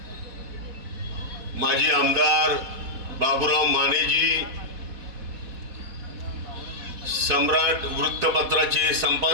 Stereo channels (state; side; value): late; left; 4.1 ms